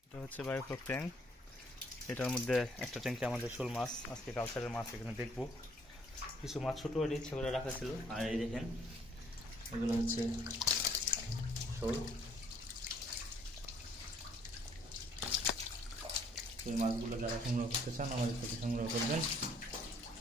এটা হচ্ছে বায়োফ্লক ট্যাঙ্ক। এটার মধ্যে একটা ট্যাঙ্কে আমাদের শোল মাছ, আজকে কালচারের মাছ এখানে দেখবো। কিছু মাছ ছোটো হয়ে ইচ্ছা করে রাখা ছিল। আর এই দেখেন এগুলো হচ্ছে শোল। এই মাছগুলো যারা সংগ্রহ করতে চান আমাদের থেকে সংগ্রহ করবেন।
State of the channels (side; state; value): both; normal; correlation 0.63